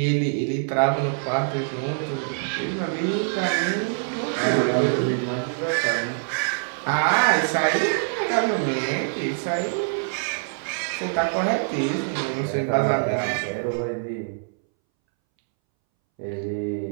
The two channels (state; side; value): silent; left; 62 dB below the other